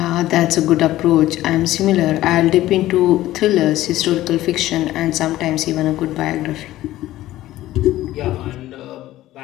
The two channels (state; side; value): quieter; right; 15.2 dB